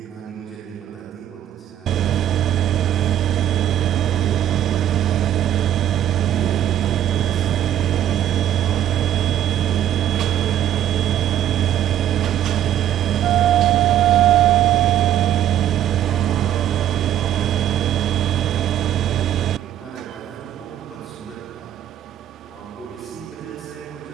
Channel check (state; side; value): quieter; left; 11.3 dB